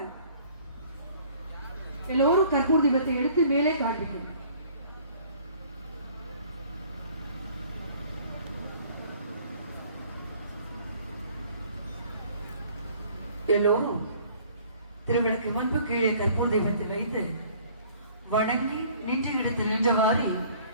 எல்லோரும் கற்பூர் தீபத்தை எடுத்து மேலே காண்பிக்கும். எல்லோரும் திருவிளக்கு முன்பு கீழே கற்பூர் தீபத்தை வைத்து வணங்கி நின்ற இடத்தில் நின்றவாறு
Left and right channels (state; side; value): inverted; both; correlation -0.54